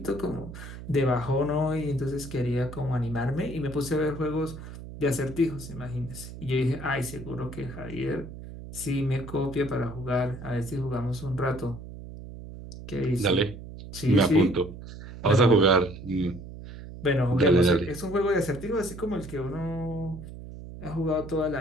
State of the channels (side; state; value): right; noise; hum, 12 dB below the sound